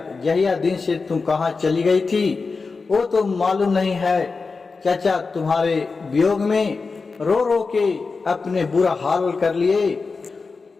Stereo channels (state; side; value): quieter; right; 4.4 dB